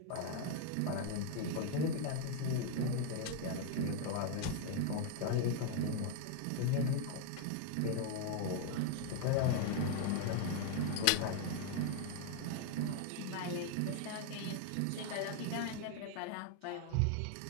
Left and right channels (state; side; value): different; both; correlation 0.00